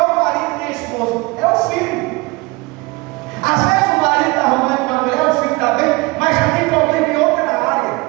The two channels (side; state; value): left; quieter; 24.2 dB